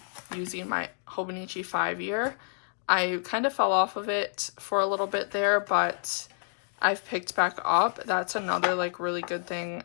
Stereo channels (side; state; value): right; silent; digital silence